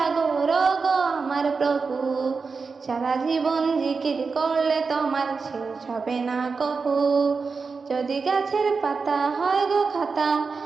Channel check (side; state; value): left; quieter; 4.8 dB